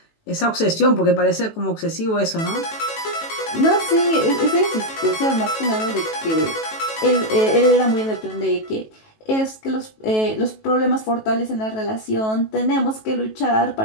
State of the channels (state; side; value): late; right; 18 ms